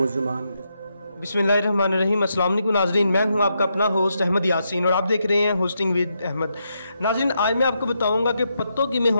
बिस्मिल्लाहिर्रहमानिर्रहीम। अस्सलाम वालेकुम नाज़रीन, मैं हूं आपका अपना होस्ट अहमद यासीन और आप देख रहे हैं होस्टिंग विद अहमद। नाज़रीन, आज मैं आपको बताऊंगा कि पत्तों में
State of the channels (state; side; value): inverted; both; correlation -0.82